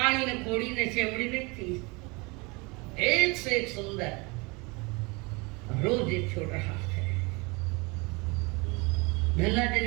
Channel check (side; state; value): left; quieter; 27.1 dB